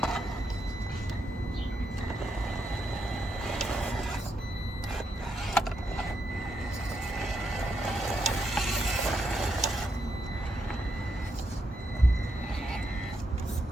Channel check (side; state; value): both; normal; correlation 0.81